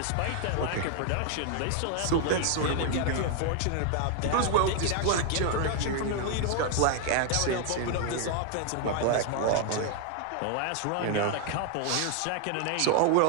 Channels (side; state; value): both; different; correlation 0.00